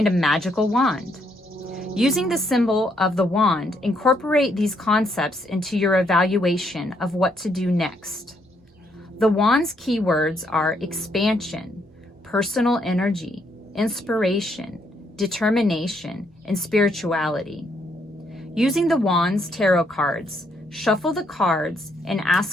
a magical wand. Using the symbol of the wand, incorporate these concepts into your evaluation of what to do next. The wand's keywords are expansion, personal energy, inspiration, determination, and spirituality. Using the wand's tarot cards, shuffle the cards and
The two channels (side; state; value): both; normal; correlation 0.73